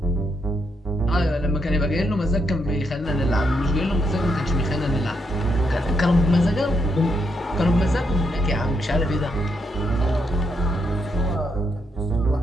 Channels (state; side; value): normal; both; correlation 0.78